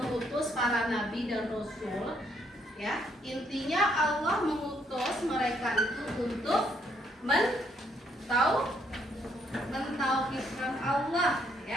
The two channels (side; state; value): both; normal; correlation 0.71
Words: para nabi dan rasul? Ya, intinya Allah mengutus mereka itu untuk mentauhidkan Allah,